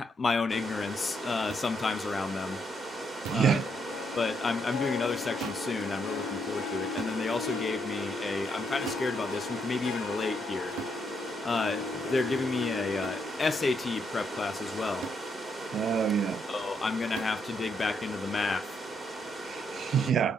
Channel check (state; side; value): normal; both; correlation 0.76